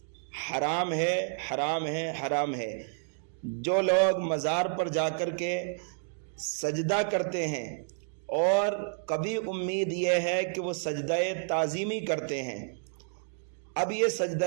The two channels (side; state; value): left; silent; digital silence